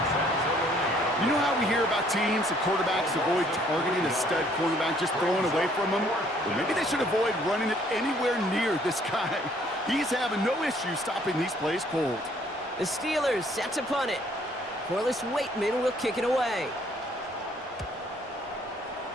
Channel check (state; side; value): normal; both; correlation 0.62